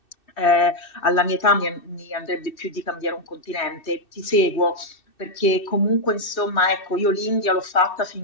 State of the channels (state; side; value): late; right; 2.6 ms